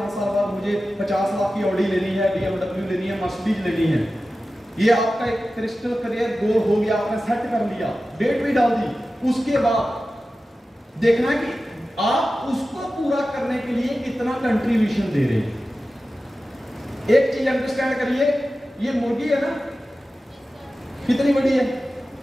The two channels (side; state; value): both; normal; correlation 0.94